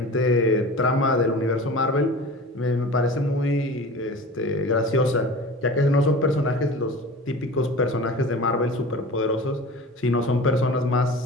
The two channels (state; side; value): normal; both; correlation 0.37